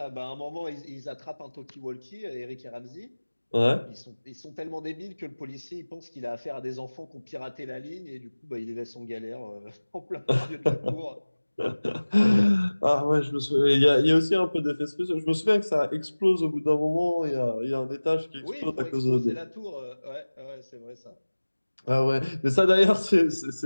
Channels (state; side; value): inverted; both; correlation -1.00